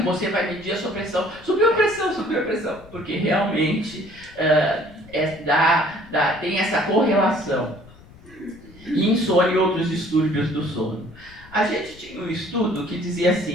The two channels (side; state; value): left; noise; rumble, 23 dB below the sound